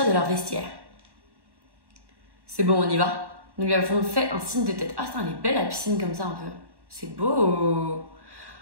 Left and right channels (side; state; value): left; late; 1.1 ms